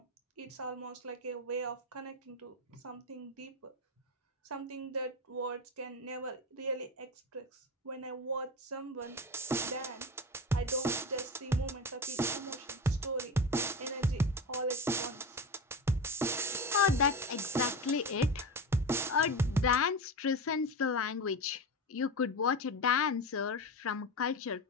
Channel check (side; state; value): both; normal; correlation 0.24